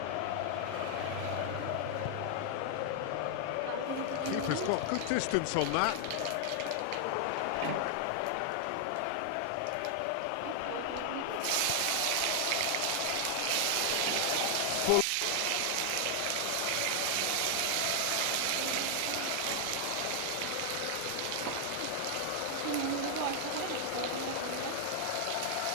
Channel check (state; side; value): different; both; correlation 0.00